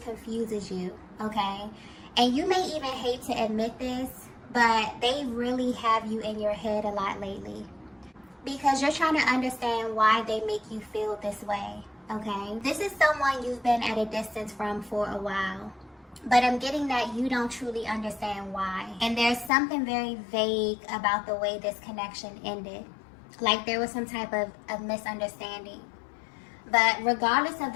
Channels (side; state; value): right; drops out; at 19.5 s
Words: confuses you, okay? And you may even hate to admit this, but they really have you in your head a lot lately, because you're trying to understand why they make you feel this way, okay? This is someone you've been at a distance from for a while, but I'm getting that you don't truly understand why. And there's something very vague about the way this connection ended. Like there was some type of misunderstanding. But regardless of